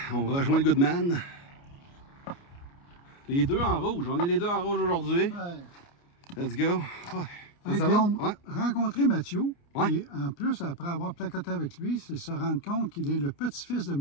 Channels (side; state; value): right; late; 29 ms